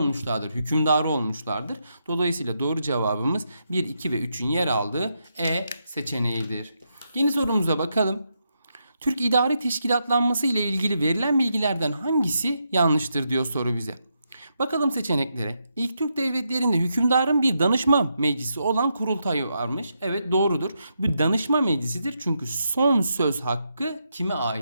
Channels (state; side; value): inverted; both; correlation -0.82